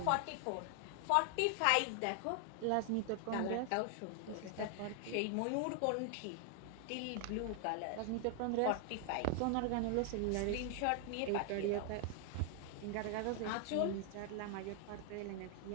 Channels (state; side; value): different; both; correlation 0.00